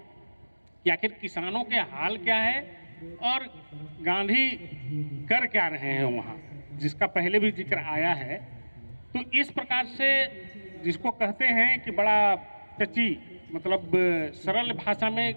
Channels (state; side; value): inverted; both; correlation -1.00